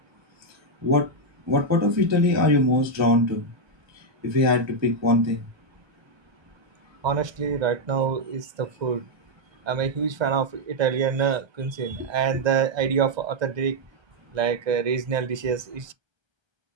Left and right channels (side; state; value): left; late; 1.3 ms